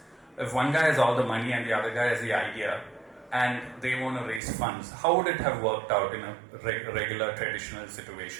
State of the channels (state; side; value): drops out; left; at 4.4 s